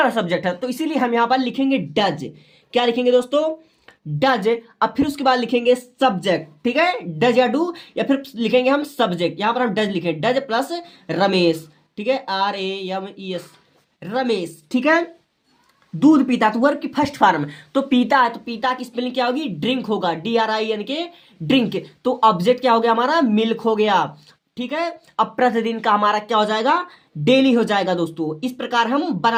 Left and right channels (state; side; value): identical; both; correlation 1.00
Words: सब्जेक्ट है, तो इसीलिए हम यहाँ पर लिखेंगे डज। क्या लिखेंगे दोस्तों, डज। अब फिर उसके बाद लिखेंगे सब्जेक्ट, ठीक है, डज या डू, या फिर लिखेंगे हम सब्जेक्ट। यहाँ पर हम डज लिखेंगे, डज प्लस रमेश, ठीक है, RAMES रमेश, ठीक है। दूध पीता, तो वर्ब की फर्स्ट फॉर्म, तो पीता है, तो पीता की स्पेलिंग क्या होगी, ड्रिंक होगा, DRINK ड्रिंक। तो ऑब्जेक्ट क्या हो गया हमारा, मिल्क हो गया, ठीक है। अब प्रतिदिन का हमारा क्या हो जाएगा, डेली हो जाएगा दोस्तों। इस प्रकार हम